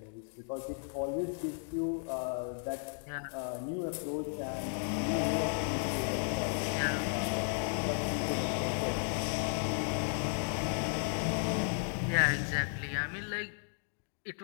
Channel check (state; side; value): silent; right; 55 dB below the other